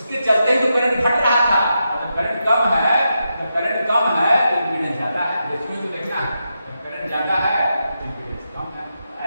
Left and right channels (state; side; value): inverted; both; correlation -0.86